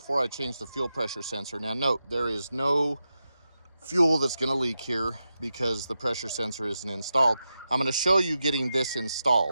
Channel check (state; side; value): inverted; both; correlation -0.89